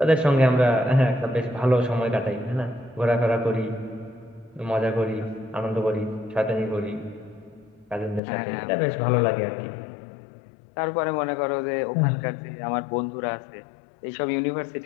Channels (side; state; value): right; drops out; at 8.2 s